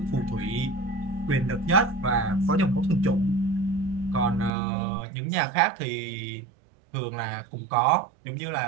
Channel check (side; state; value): left; drops out; at 4.5 s